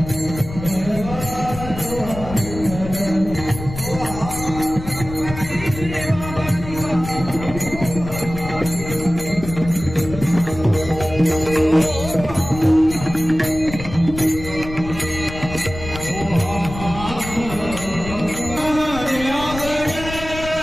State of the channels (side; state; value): left; noise; rumble, 10 dB below the sound